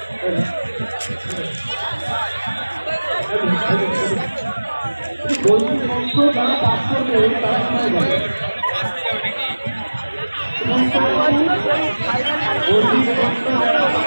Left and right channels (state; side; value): inverted; both; correlation -1.00